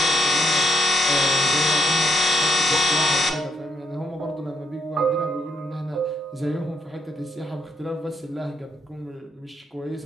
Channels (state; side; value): normal; both; correlation 0.78